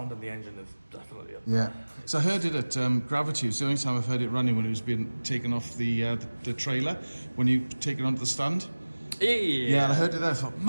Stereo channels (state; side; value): inverted; both; correlation -1.00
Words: of the engine is definitely up. Yeah. So I heard it at Gravity. It's the only time I've heard it running when it was being taken off the trailer, when you take it onto the stand. Yeah, and I heard it there. I thought,